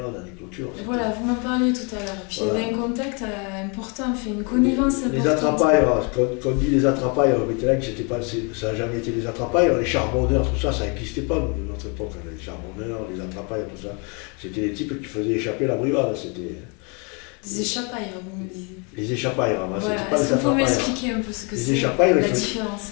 dans des clôtures. Voilà, vous m'en parliez tout à l'heure. Puis Voilà. il y avait un contact important, fait une connivence importante. Les attrapailles, quand on dit les attrapailles, on là que ça n'a jamais été des attrapailles, les charbonneurs, tout ça, ça n'existait pas de notre époque. Les charbonneurs, les attrapailles, tout ça. C'était des types qui faisaient échapper la brivade. Des échappailles, vous me disiez. Les échappailles, Voilà. c'était pas Est-ce les que vous pouvez attrapailles. m'expliquer un peu ce que Les c'est, échappailles, la il faut- différence?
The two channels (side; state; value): right; quieter; 33.6 dB